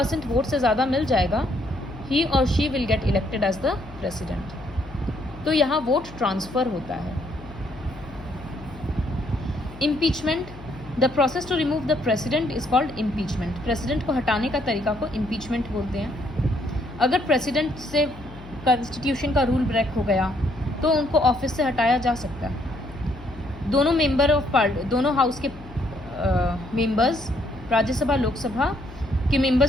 वोट से ज़्यादा मिल जाएगा, ही और she will get elected as the president. तो यहाँ वोट ट्रांसफ़र होता है। Impeachment, the process to remove the president is called impeachment. President को हटाने का तरीका को इम्पीचमेंट बोलते हैं। अगर प्रेसिडेंट से कॉन्स्टिट्यूशन का रूल ब्रेक हो गया तो उनको ऑफिस से हटाया जा सकता है। दोनों मेंबर ऑफ दोनों हाउस के मेंबर्स, राज्यसभा लोकसभा के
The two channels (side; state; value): left; noise; hum, 17 dB below the sound